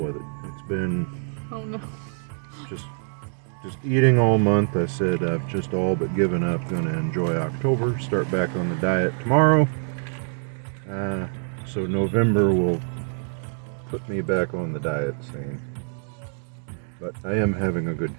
it. It's been Oh no. just eating all month. I said I've just all but given up. Gonna enjoy October. Start back on the diet tomorrow. So November will put me back on the diet scene. But I am having a good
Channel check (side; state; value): left; silent; 62 dB below the other